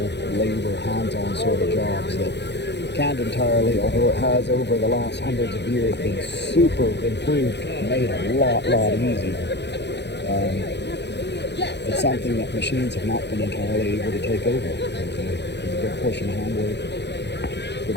labor, hands-on sort of jobs that can't entirely, although it has over the last hundreds of years been super improved, made a lot easier. It's something that machines have not been entirely able to take over. There's a good portion of handwork, a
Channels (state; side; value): late; right; 0.50 ms